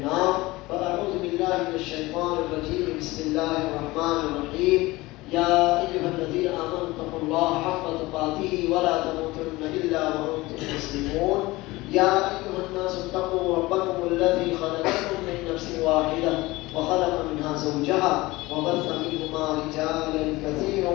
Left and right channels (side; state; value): right; quieter; 20.5 dB